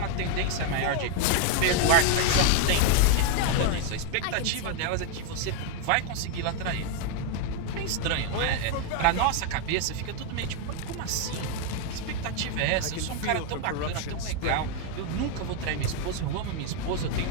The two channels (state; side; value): different; both; correlation 0.01